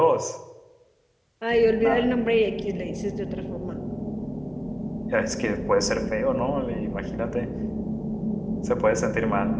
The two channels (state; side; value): identical; both; correlation 1.00